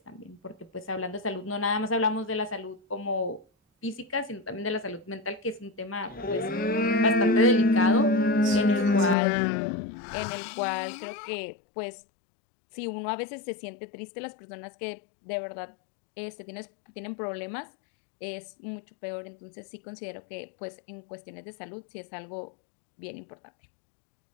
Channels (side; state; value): right; drops out; at 9.2 s